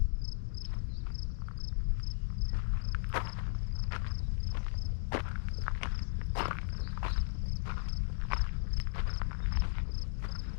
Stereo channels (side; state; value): right; silent; digital silence